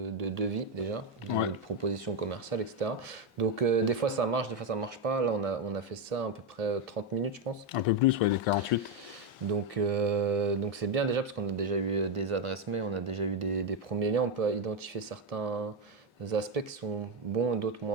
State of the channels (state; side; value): normal; both; correlation 0.06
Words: devis déjà, de proposition commerciale, etc. Donc, des fois, ça marche, des fois, ça marche pas. Là, on a fait ça à peu près 30 minutes, je pense. Un peu plus, ouais, les 48. Donc c'est bien déjà parce qu'on a déjà eu des adresses mail, on a déjà eu des premiers liens, on peut identifier certains aspects qui sont bons et d'autres